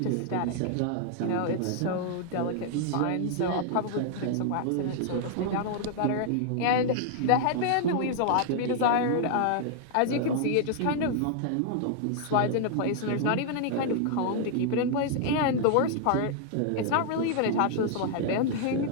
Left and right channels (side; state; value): both; different; correlation -0.01